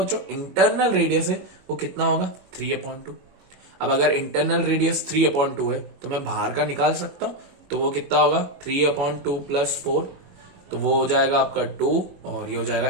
इंटरनल रेडियस है, वो कितना होगा 3/2। अब अगर इंटरनल रेडियस 3/2 है तो मैं बाहर का निकाल सकता हूं, तो वो कितना होगा 3/2 प्लस 4, तो वो हो जाएगा आपका 2, और ये हो जाएगा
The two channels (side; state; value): left; late; 21 ms